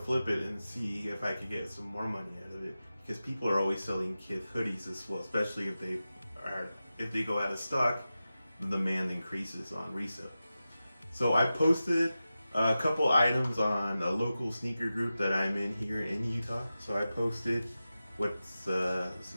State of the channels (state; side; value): inverted; both; correlation -0.94